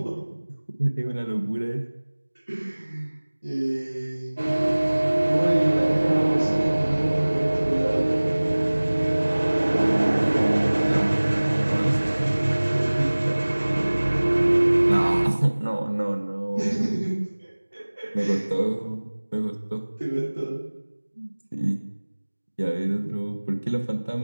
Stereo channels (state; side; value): inverted; both; correlation -1.00